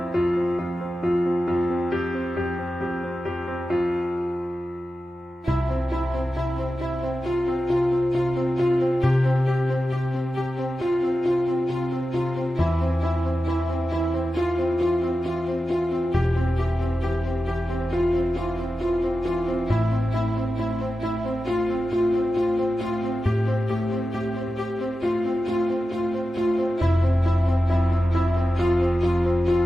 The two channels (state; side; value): normal; both; correlation 0.92